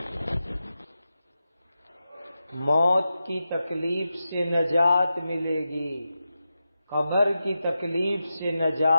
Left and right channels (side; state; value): both; inverted; correlation -0.90